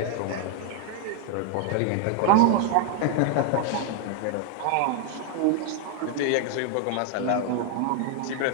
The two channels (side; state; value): both; different; correlation 0.00